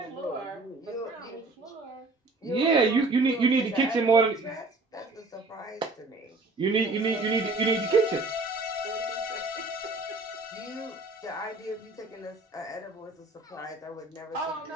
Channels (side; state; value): left; quieter; 3.1 dB